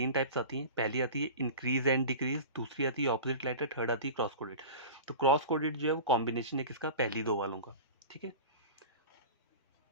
टाइप्स आती हैं। पहली आती है इंक्रीज एंड डिक्रीज, दूसरी आती है ऑपोजिट लेटर, थर्ड आती है क्रॉस कोडेड। तो क्रॉस कोडेड जो है वो कॉम्बिनेशन है किसका, पहली 2 वालों का, ठीक है।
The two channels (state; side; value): inverted; both; correlation -0.33